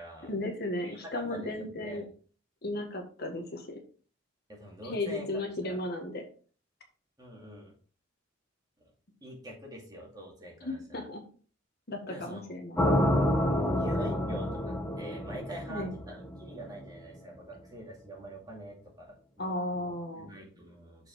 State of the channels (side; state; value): both; normal; correlation 0.57